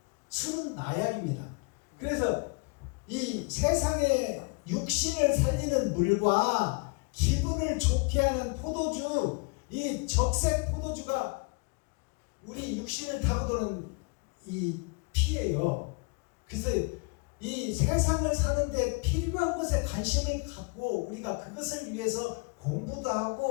술은 마약입니다. 그래서 이 세상의 육신을 살리는 물과 기분을 좋게 하는 포도주, 이 적색 포도주가 우리 육신을 타고 도는 이 피예요. 그래서 이 세상을 사는데 필요한 것에 관심을 갖고 우리가 그것을 위해서 공부도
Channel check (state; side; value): quieter; right; 32.0 dB